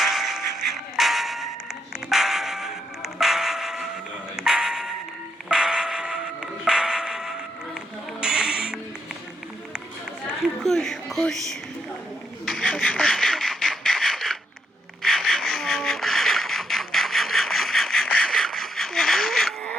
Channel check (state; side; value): normal; both; correlation 0.79